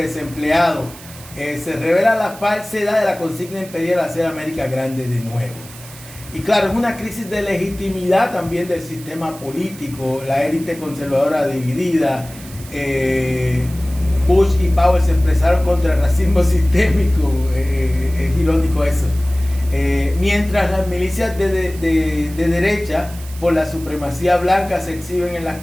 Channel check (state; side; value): noise; right; hiss, 18 dB below the sound